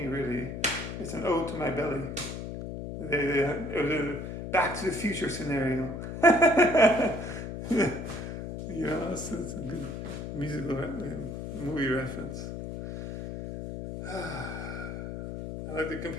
really. It's an ode to my belly. It was a Back to the Future scenario. It's a good musical movie reference. I like to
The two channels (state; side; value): noise; left; hum, 7 dB below the sound